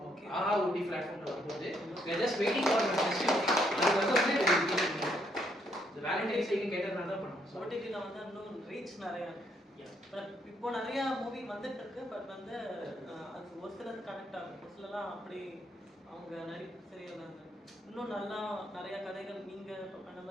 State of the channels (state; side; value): normal; both; correlation 0.73